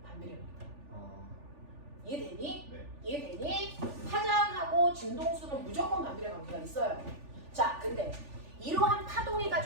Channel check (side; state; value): left; late; 3.4 ms